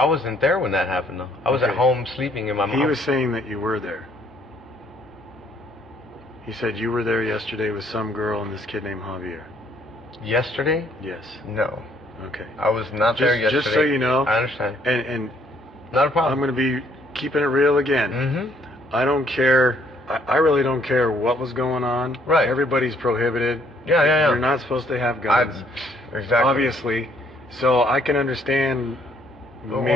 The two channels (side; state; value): both; normal; correlation 0.65